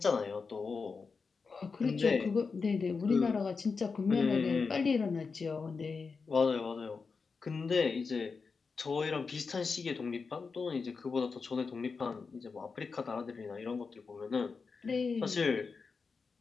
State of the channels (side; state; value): right; quieter; 4.9 dB